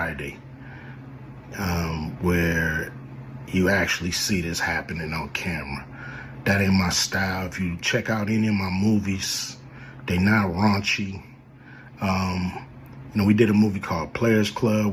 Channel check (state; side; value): identical; both; correlation 1.00